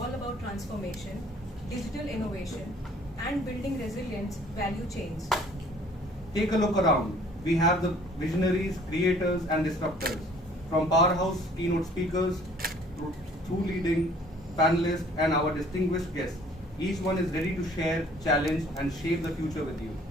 about transformation, digital innovation, and building resilient value chains. Take a look around. We have the visionaries, creators, and disruptors, from powerhouse keynote speakers through leading panelists and our distinguished guests. Each one is ready to share, challenge, and shape the future with you.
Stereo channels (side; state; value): both; normal; correlation 0.55